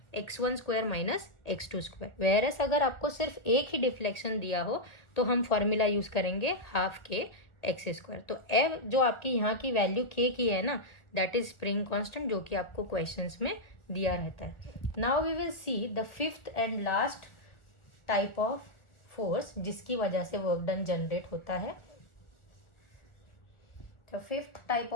x1 square minus x2 square. Whereas अगर आपको सिर्फ एक ही डिफ्लेक्शन दिया हो तो हम फॉर्मूला यूज करेंगे हाफ के x स्क्वायर। तो f जो आपकी यहाँ की वैल्यू k की है ना, दैट इज स्प्रिंग कांस्टेंट, जो कि आपको क्वेश्चंस में दिया रहता है। Now we will see the fifth and last type of force जिसकी वजह से वर्क डन जनरेट होता है। तो फिफ्थ टाइप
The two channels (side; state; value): right; late; 1.2 ms